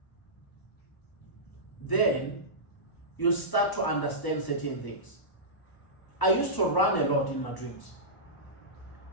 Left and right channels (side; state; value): right; late; 1.0 ms